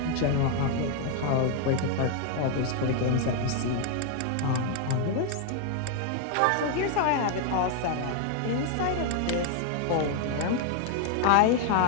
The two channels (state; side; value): different; both; correlation 0.00